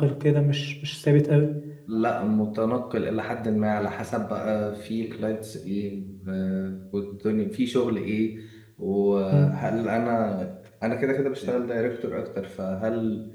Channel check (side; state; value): both; identical; correlation 1.00